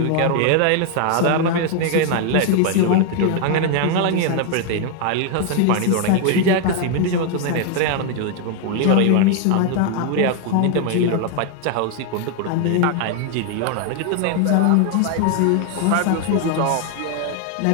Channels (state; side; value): different; both; correlation 0.00